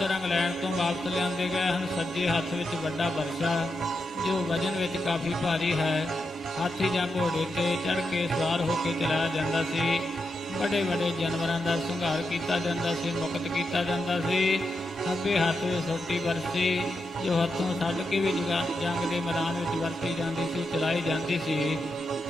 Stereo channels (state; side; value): normal; both; correlation 0.86